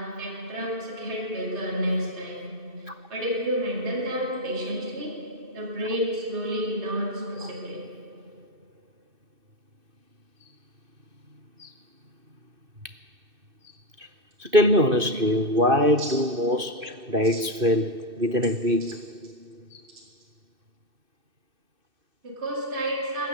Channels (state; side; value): late; left; 2.6 ms